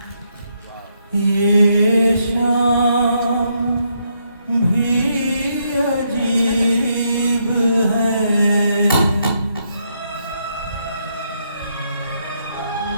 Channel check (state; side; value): inverted; both; correlation -0.77